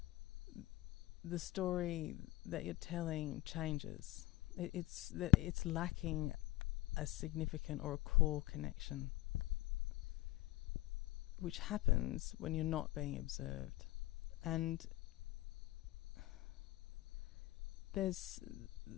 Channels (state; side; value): quieter; right; 17.3 dB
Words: the story that you're telling changes. It's lacking a significant or a core connection, which happens when you're not being observed. And there's